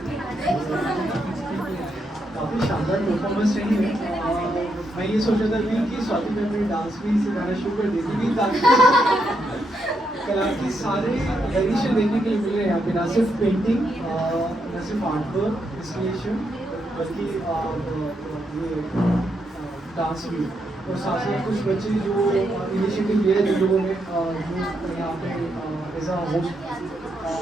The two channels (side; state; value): both; normal; correlation 0.80